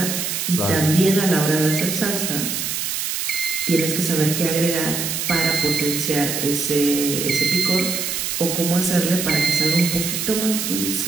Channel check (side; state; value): right; noise; hiss, 2 dB below the sound